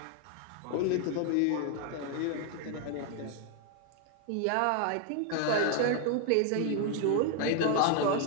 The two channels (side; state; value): both; different; correlation 0.00